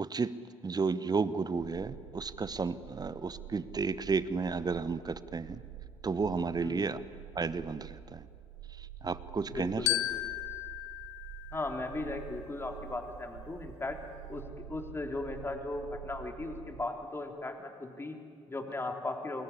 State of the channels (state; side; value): normal; both; correlation 0.64